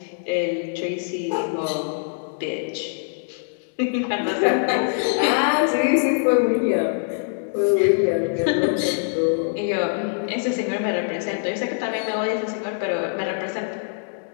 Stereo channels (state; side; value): silent; right; digital silence